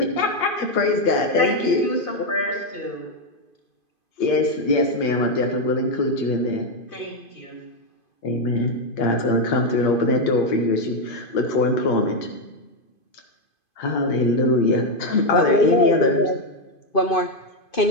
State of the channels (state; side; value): late; right; 2.5 ms